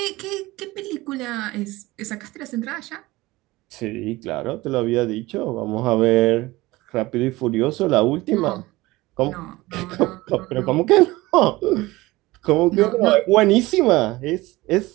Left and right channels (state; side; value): quieter; left; 19.8 dB